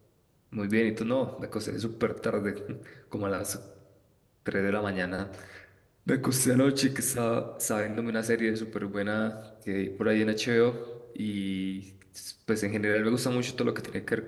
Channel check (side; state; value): both; identical; correlation 1.00